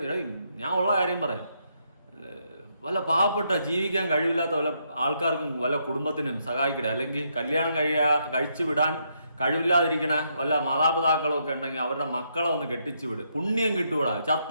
ഞാൻ ഉള്ള കാര്യം പറയാം. വല്ല പാവപ്പെട്ട ജീവിക്കാൻ കഴിവില്ലാത്ത വല്ല ആൾക്കാർക്കും വല്ല കുടുംബത്തിനും സഹായിക്കട്ടെ. അല്ലെങ്കിൽ കല്യാണം കഴിച്ചു വിടാൻ കഴിവില്ലാതിരിക്കണ വല്ല മാതാപിതാക്കളും ഒക്കെ ഉണ്ടെങ്കിൽ അവരുടെ മക്കളെ ഒന്ന് കെട്ടിച്ചു വിട്. പുണ്യം കിട്ടുവിടാ.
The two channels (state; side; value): inverted; both; correlation -0.77